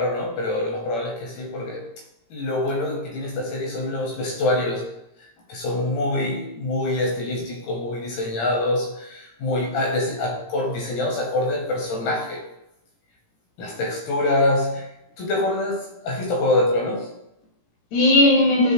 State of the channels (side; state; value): right; late; 17 ms